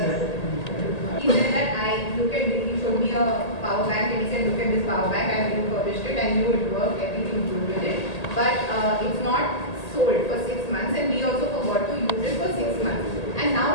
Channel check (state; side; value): late; right; 1.8 ms